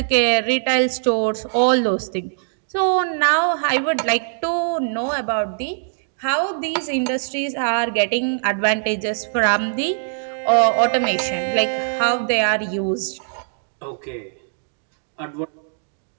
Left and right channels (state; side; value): silent; left; digital silence